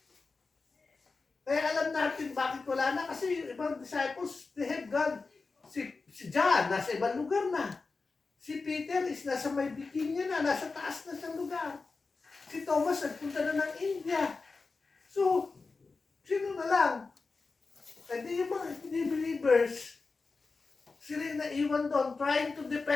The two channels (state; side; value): quieter; right; 4.1 dB